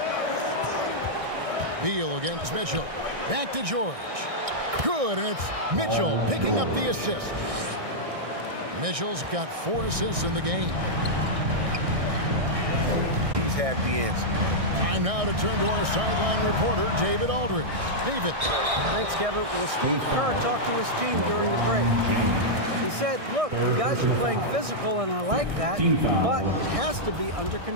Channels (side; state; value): left; late; 1.6 ms